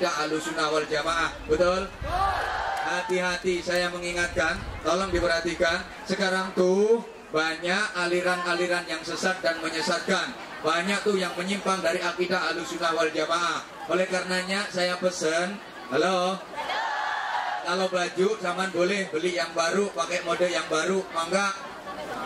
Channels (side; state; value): both; identical; correlation 1.00